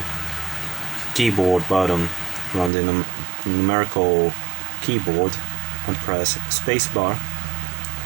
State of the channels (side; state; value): left; drops out; at 2.7 s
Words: keyboard button on the numerical keyboard and press spacebar,